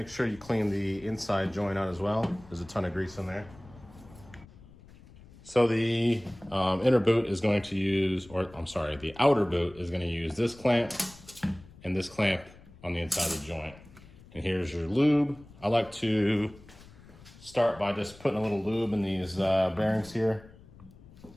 sure you clean the inside joint out as well. There's a ton of grease in there. So the inner boot is going to use, or I'm sorry, the outer boot is going to use this clamp and this clamp on the inside of the joint. And here's your lube. I like to start by just putting a little lube in these bearings here.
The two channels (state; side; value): noise; left; rumble, 22 dB below the sound